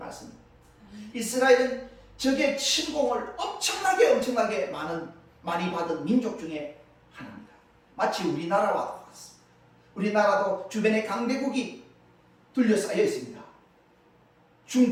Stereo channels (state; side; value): identical; both; correlation 1.00